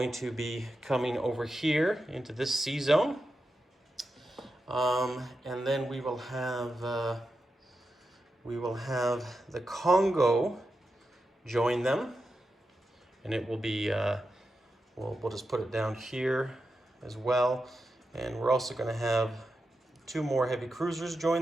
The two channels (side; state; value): both; normal; correlation 0.89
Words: to be coming over here into this sea zone. And then we will have the Congo join them, and it will be we'll just put it down here as well. And we're also going to have 2 more heavy cruisers